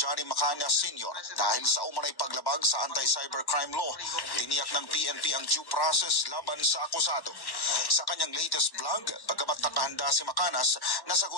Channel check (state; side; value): late; right; 1.1 ms